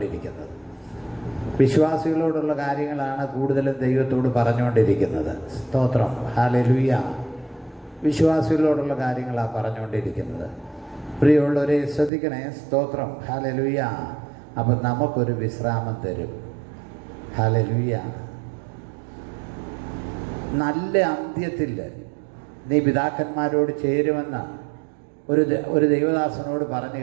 വിശ്വാസികളോടുള്ള കാര്യങ്ങളാണ് കൂടുതലും ദൈവത്തോട് പറഞ്ഞുകൊണ്ടിരിക്കുന്നത്. സ്തോത്രം. ഹല്ലേലൂയ. വിശ്വാസികളോടുള്ള കാര്യങ്ങളാണ് പറഞ്ഞുകൊണ്ടിരിക്കുന്നത്. പ്രിയമുള്ളവരെ ശ്രദ്ധിക്കണേ. സ്തോത്രം. ഹല്ലേലൂയ. അപ്പം നമുക്കൊരു വിശ്രാമം തരും. ഹല്ലേലൂയ. നല്ല അന്ത്യത്തിൽ നീ പിതാക്കന്മാരോട് ചേരുമെന്ന് ഒരു ദൈവദാസനോട് പറഞ്ഞു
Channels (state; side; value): drops out; left; at 12.1 s